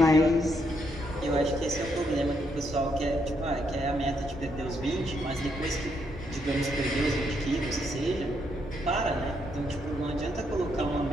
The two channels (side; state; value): both; normal; correlation 0.76